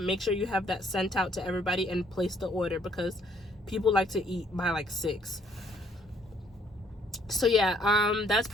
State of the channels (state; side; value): normal; both; correlation 0.64